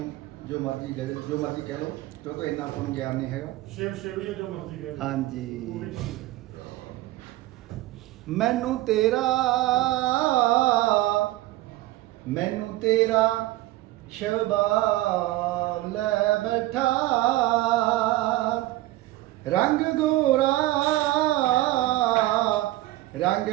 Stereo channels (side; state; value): left; quieter; 17.3 dB